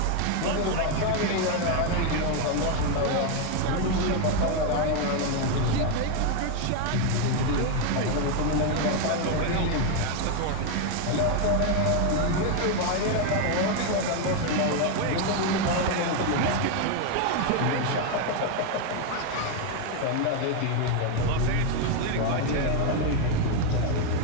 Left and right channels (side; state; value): both; different; correlation 0.01